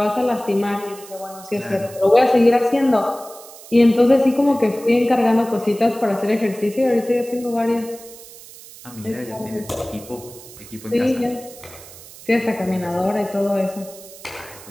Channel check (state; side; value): noise; right; hiss, 18 dB below the sound